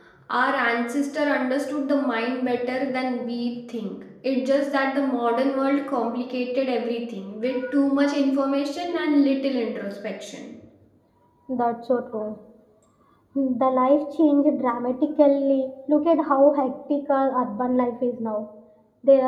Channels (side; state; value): both; identical; correlation 1.00